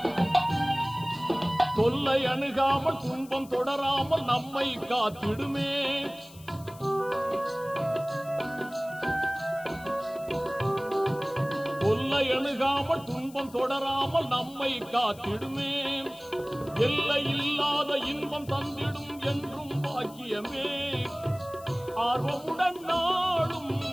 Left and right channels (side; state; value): left; noise; hiss, 21 dB below the sound